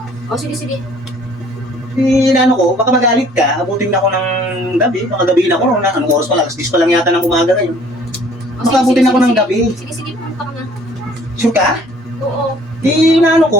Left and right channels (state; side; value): normal; both; correlation 0.55